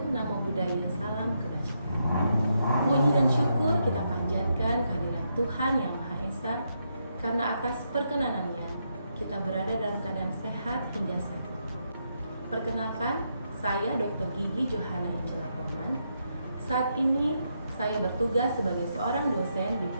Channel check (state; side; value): inverted; both; correlation -0.80